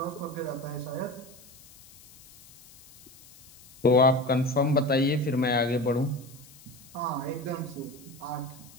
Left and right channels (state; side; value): noise; left; hiss, 22 dB below the sound